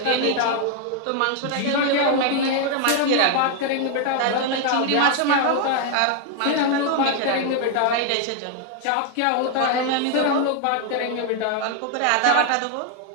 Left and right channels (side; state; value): both; different; correlation 0.00